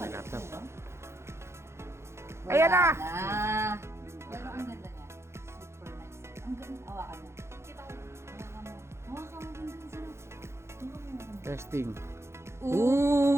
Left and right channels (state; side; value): late; left; 0.13 ms